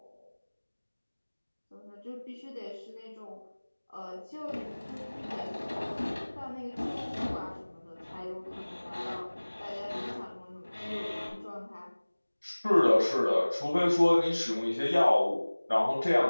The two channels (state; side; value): inverted; both; correlation -1.00